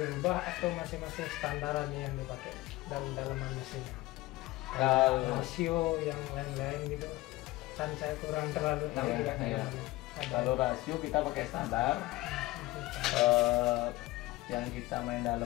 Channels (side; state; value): right; quieter; 19.3 dB